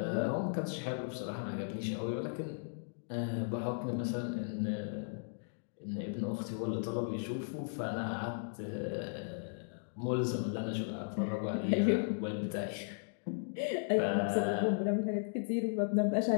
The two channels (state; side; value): silent; right; digital silence